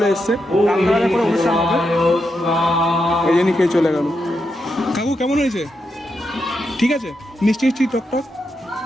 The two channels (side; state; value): both; normal; correlation 0.85